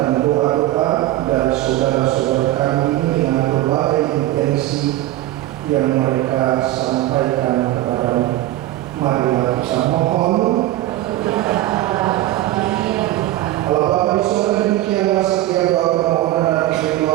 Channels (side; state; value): left; quieter; 15.4 dB